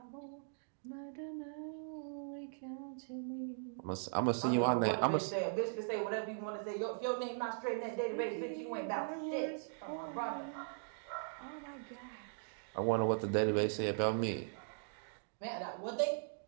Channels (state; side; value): silent; left; digital silence